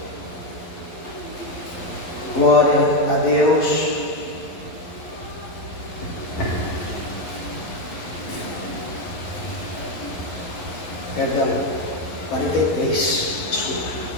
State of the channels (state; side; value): late; right; 11 ms